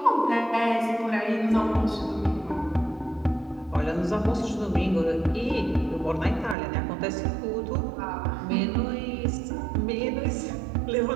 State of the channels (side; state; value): left; drops out; at 6.6 s